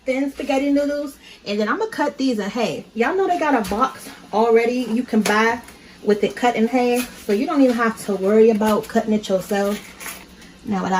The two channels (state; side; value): identical; both; correlation 1.00